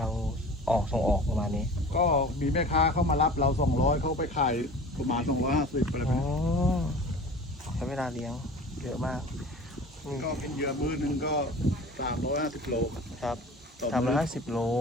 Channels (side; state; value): both; normal; correlation 0.40